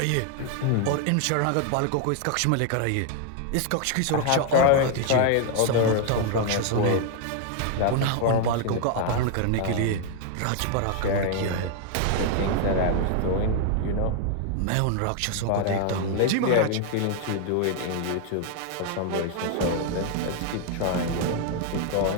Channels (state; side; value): different; both; correlation 0.00